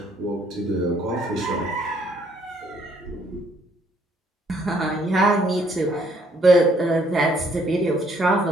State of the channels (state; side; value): normal; both; correlation 0.66